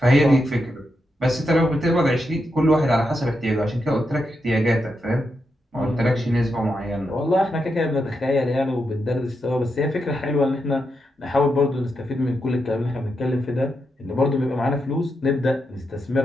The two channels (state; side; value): normal; both; correlation 0.84